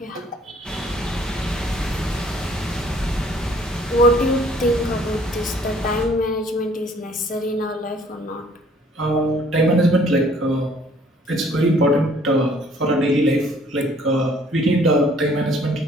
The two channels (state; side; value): normal; both; correlation 0.59